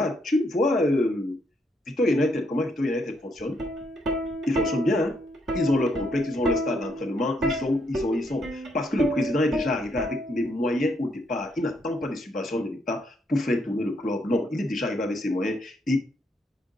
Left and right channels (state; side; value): normal; both; correlation 0.74